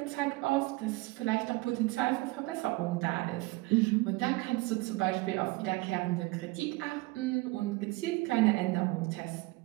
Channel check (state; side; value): quieter; left; 22.7 dB